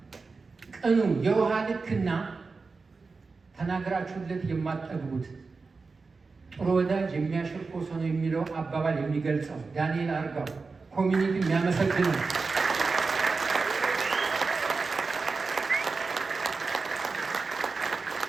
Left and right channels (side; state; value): left; quieter; 4.3 dB